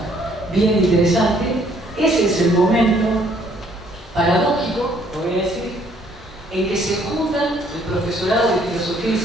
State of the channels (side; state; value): both; normal; correlation 0.64